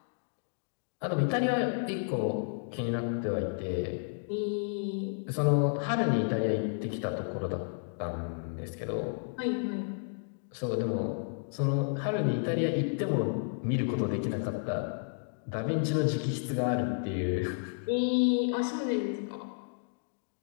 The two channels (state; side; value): silent; right; digital silence